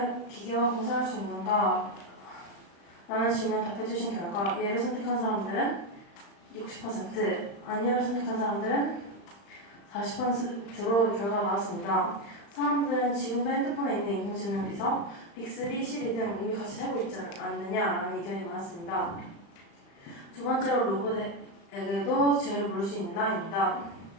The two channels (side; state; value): right; late; 35 ms